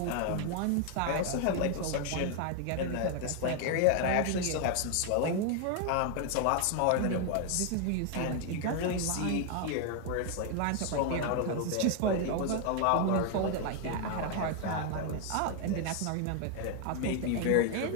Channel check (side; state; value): both; different; correlation 0.01